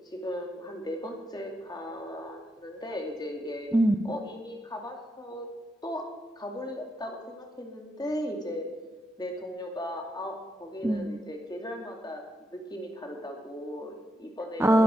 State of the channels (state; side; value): normal; both; correlation 0.81